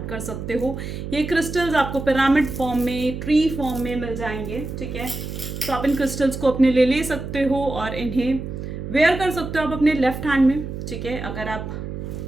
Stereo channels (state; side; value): noise; right; hum, 7 dB below the sound